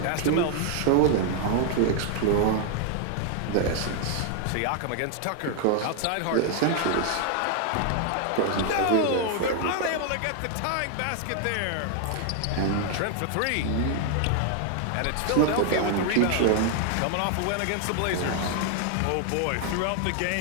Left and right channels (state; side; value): different; both; correlation 0.00